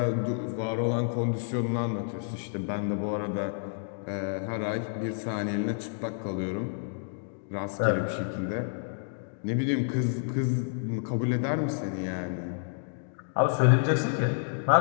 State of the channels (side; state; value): right; silent; digital silence